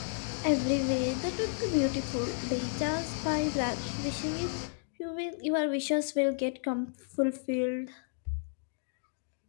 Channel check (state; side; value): silent; right; digital silence